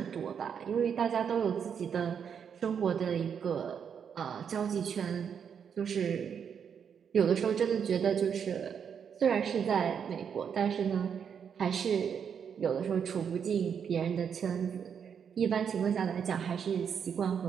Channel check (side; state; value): left; quieter; 7.4 dB